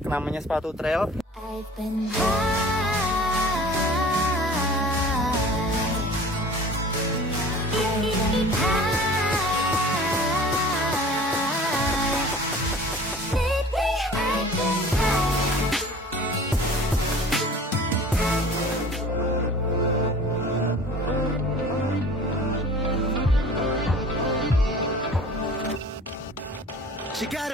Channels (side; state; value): both; normal; correlation 0.44